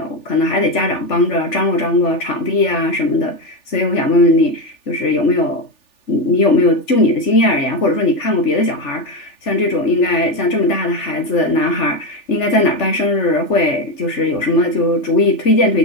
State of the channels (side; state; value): right; late; 3.4 ms